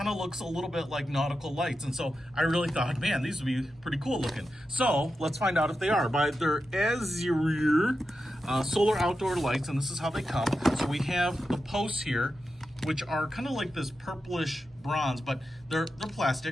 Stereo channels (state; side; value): normal; both; correlation 0.90